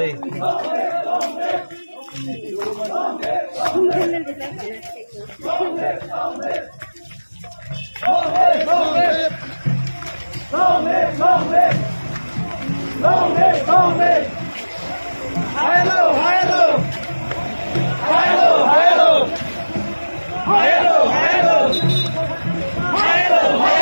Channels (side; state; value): both; inverted; correlation -1.00